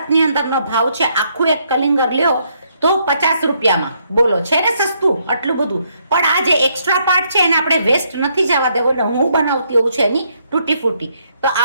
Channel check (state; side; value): inverted; both; correlation -0.73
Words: અંદરનો ભાવ છે, આખું એક કલિંગર લ્યો તો 50 રૂપિયામાં. બોલો, છે ને સસ્તું આટલું બધું? પણ આ જે એક્સ્ટ્રા પાર્ટ છે એને આપણે વેસ્ટ નથી જવા દેવો. એટલે હું બનાવતી એવું છે એની તૂટી ફૂટી. તો